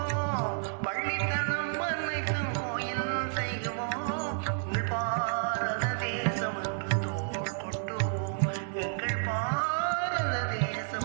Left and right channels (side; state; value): left; silent; digital silence